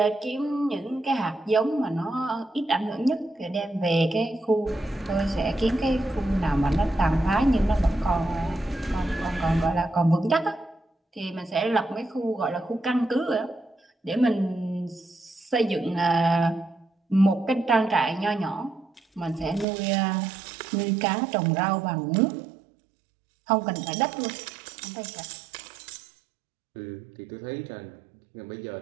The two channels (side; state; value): left; drops out; at 19.7 s